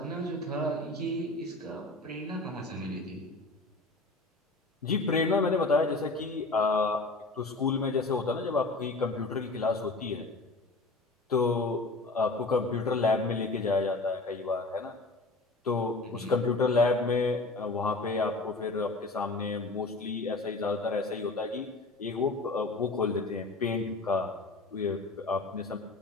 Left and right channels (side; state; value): right; quieter; 3.2 dB